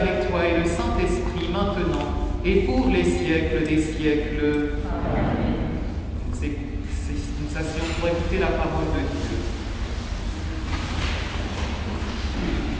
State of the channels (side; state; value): both; identical; correlation 1.00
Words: toi et le Saint-Esprit maintenant et pour les siècles des siècles. Amen. Nous asseyons pour écouter la parole de Dieu.